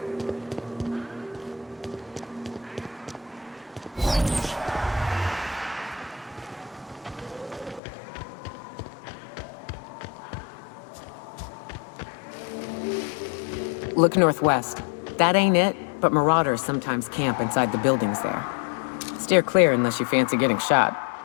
Look northwest. That ain't it, but marauders sometimes camp inside the buildings there. Steer clear unless you fancy getting shot.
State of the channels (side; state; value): right; drops out; at 7.8 s